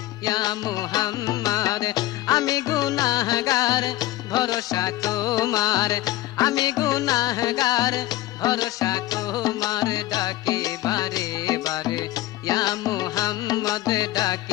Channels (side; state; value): right; quieter; 16.1 dB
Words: ইয়া মুহাম্মদ। আমি গুনাহগার ভরসা তোমার, আমি গুনাহগার ভরসা তোমার, ডাকি বারে বারে ইয়া মুহাম্মদ,